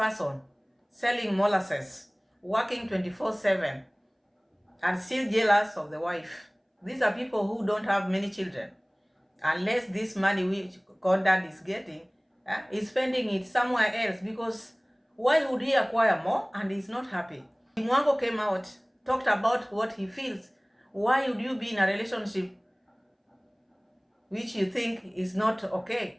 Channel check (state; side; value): identical; both; correlation 1.00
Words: selling molasses, working 24/7, and still jealous of the wife. These are people who don't have many children. Unless this money which Conrad is getting, is spending it somewhere else, because why would he acquire more and he's not happy? Dee Mwango came out, talked about what he feels. Why would you be in a relationship which you think is not